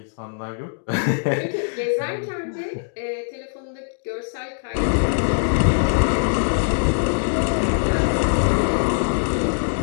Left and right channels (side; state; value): right; silent; digital silence